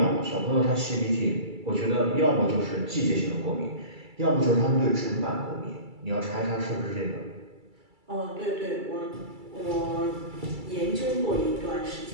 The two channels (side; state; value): left; late; 2.3 ms